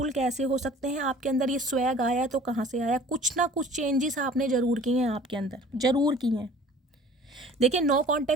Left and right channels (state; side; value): normal; both; correlation 0.48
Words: कैसे हो सकते हैं, आपके अंदर ये स्वैग आया तो कहाँ से आया। कुछ ना कुछ चेंजेस आपने ज़रूर किए हैं, आपके अंदर ज़रूर किए हैं। देखिए नो